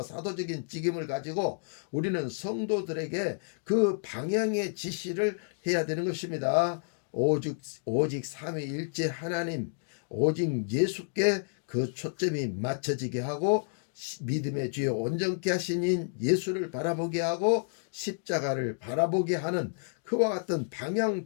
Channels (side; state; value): right; silent; digital silence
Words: 사도적인 직임을 가지고 우리는 성도들에게 그 방향의 지시를 해야 되는 것입니다. 오직 삼위일체 하나님 오직 예수께 그 초점이 맞춰지게 하고 믿음의 주여 온전케 하신 예수를 바라보게 하고 십자가를 바라보게 하는 그와 같은 방향